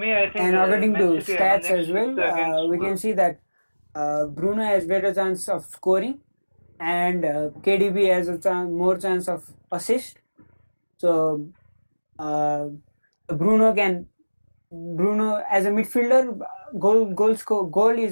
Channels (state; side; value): inverted; both; correlation -1.00